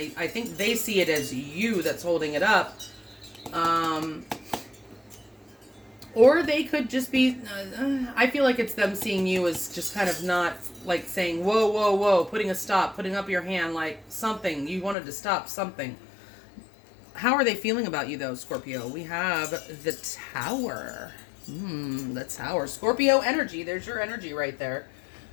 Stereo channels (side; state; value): right; drops out; at 15.0 s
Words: think they see it as you that's holding it up. Or they could just be, I feel like it's them seeing you as just kind of not like saying, whoa, whoa, whoa, putting a stop, putting up your hand, like something. You wanted to stop something. How are they feeling about you though, Scorpio? We have the Tower. The Tower. Scorpio energy. There's your energy right there.